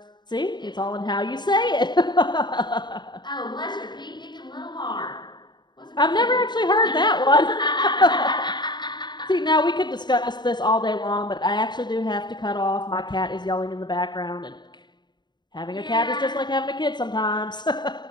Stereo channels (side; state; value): right; late; 0.21 ms